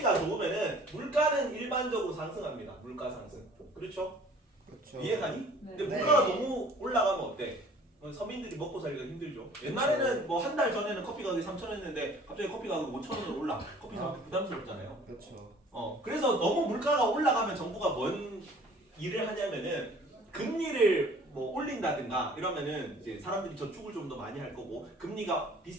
좋으면은 물가는 일반적으로 상승합니다. 물가 상승. 그렇죠? 이해가니? 네. 근데 물가가 너무 올라가면 어때? 서민들이 먹고 살기가 힘들죠. 옛날에는 뭐 한 달 전에는 커피 가격이 3,000원이었는데 갑자기 커피 가격이 5,000원으로 올라. 커피 사기 부담스럽잖아요. 그렇죠. 그래서 너무 물가가 올라가면 정부가 뭔 일을 하냐면은 금리를 뭐 올린다든가 이러면은 이제 사람들이 저축을 좀 더 많이 할 거고 금리가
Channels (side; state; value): both; normal; correlation 0.51